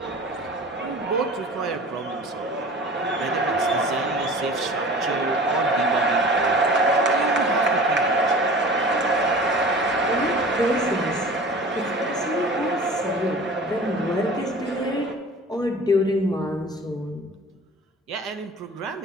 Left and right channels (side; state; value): both; normal; correlation 0.41